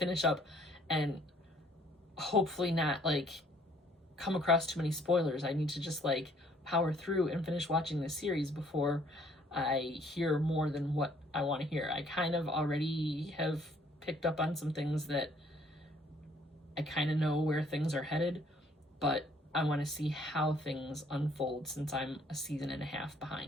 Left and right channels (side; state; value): both; normal; correlation 0.62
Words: up and hopefully not like come across too many spoilers. I need to just like power through and finish watching this series before I hear more than what I want to hear. I kind of already have picked up on some things that I kind of know where things are headed, but I want to see how things unfold since I'm a season and a half